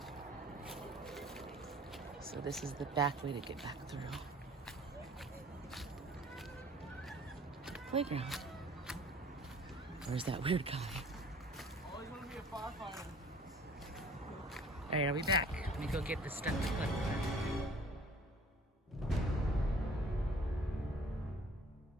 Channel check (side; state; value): both; normal; correlation 0.51